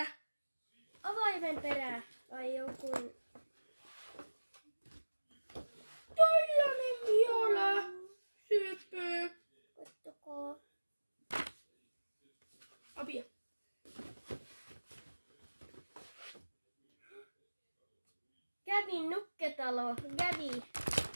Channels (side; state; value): both; inverted; correlation -1.00